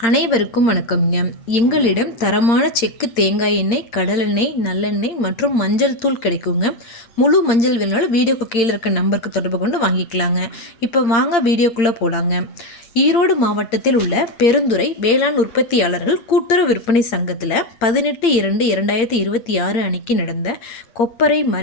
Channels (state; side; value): late; right; 8.7 ms